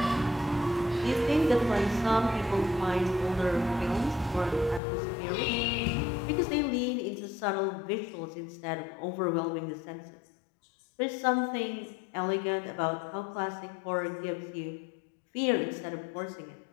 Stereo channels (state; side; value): drops out; right; at 4.8 s